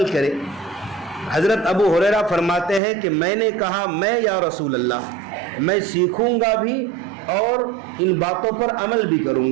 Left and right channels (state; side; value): drops out; left; at 2.8 s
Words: کرے؟ حضرت ابو ہریرہ فرماتے ہیں کہ میں نے کہا میں یا رسول اللہ، میں سیکھوں گا بھی اور ان باتوں پر عمل بھی کروں